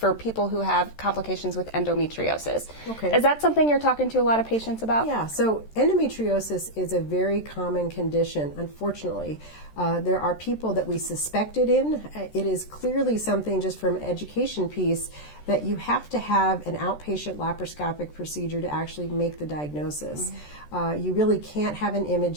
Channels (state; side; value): late; right; 13 ms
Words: people who have complications with endometriosis. Okay. Is that something you're talking to a lot of patients about? Yeah, so endometriosis is a very common condition, unfortunately. There are people that we suspect it in. It is clearly something, just from an education piece, that you have to have an outpatient laparoscopic procedure to actually make the diagnosis. You really can't have an